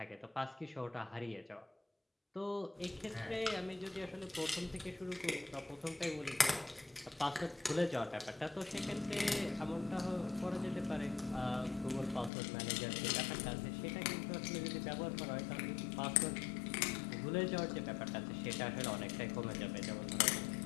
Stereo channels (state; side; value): drops out; right; at 12.3 s